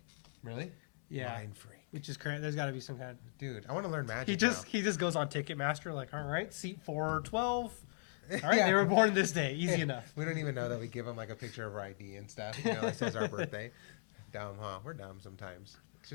Really? Yeah. Mind freak. Which is crazy. There's got to be some kind of... Dude, I want to learn magic. He just goes on Ticketmaster like, all right, seat 412. All right, they were born this day. Easy enough. We don't even know that we give them like a picture of our ID and stuff. It says our birthday. Dumb, huh? We're dumb sometimes. It's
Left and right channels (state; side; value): silent; right; digital silence